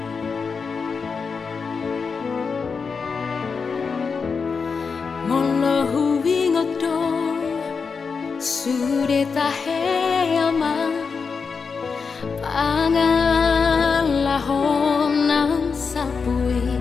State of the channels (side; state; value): right; quieter; 5.3 dB